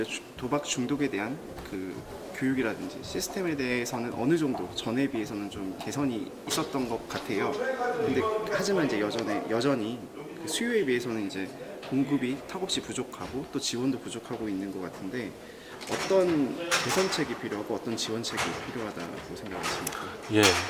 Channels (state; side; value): identical; both; correlation 1.00